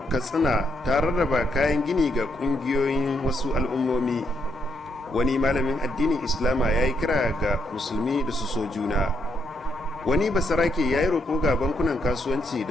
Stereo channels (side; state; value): both; normal; correlation 0.77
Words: Katsina ta rarraba kayan gini ga ƙungiyoyin wasu al'ummomi. Wani malamin addinin Islama ya yi kira ga musulmi da su so juna. Wani basarake ya yi roƙo ga bankunan kasuwanci